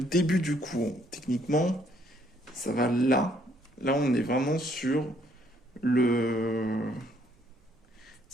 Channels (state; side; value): normal; both; correlation 0.67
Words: du cou. Techniquement, ça va là. Là, on est vraiment sur le...